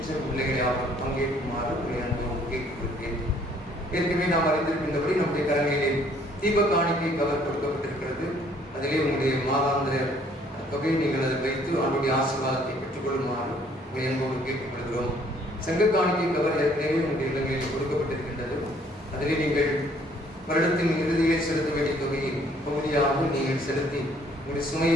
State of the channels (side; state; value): both; normal; correlation 0.61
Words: பிள்ளைகளை யாரும் பங்கேற்குமாறு உங்களை அன்போடு கேட்டுக்கொள்கிறேன். ஏற்கனவே நாம் அறிந்திருக்கின்றபடி நம்முடைய கரங்களிலே தீப காணிக்கை கவர் கொடுக்கப்பட்டிருக்கிறது. அதிலே உங்களுடைய மாதாந்திர தொகையை நீங்கள் அதை வைத்து அவனுடைய ஆசீர்வாதத்தை பெற்றுக்கொள்ளுமாறு உங்களை அன்போடு கேட்டுக்கொள்கிறோம். சங்க காணிக்கை கவர் ஏற்கனவே உங்களுடைய இல்லங்களில் கொடுக்கப்பட்டிருக்கின்றது. அதிலே நீங்கள் வருடத்தின் இறுதியில் செலுத்த வேண்டிய தொகையை பகுதியாக நீங்கள் செலுத்தி உங்களுடைய